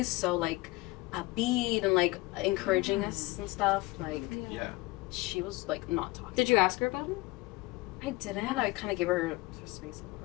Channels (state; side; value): quieter; right; 21.5 dB